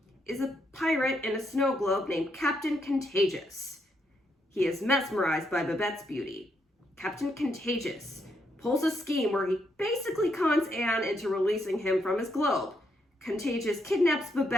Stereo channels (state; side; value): normal; both; correlation 0.77